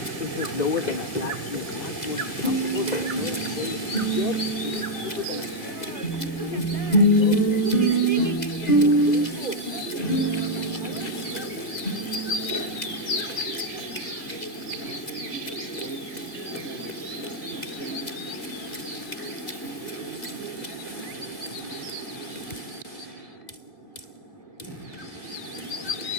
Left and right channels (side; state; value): right; late; 2.0 ms